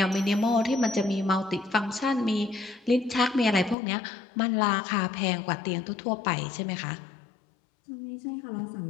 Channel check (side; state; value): right; drops out; at 3.8 s